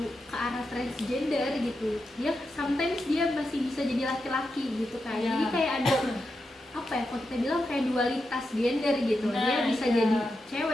ke arah transgender gitu. Dia sometimes dia masih bisa jadi laki-laki gitu kan. Jadi kayak ada apa ya, kalau kita bilang kayak dualitas gender gitu. Dia bisa jadi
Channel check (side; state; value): both; normal; correlation 0.87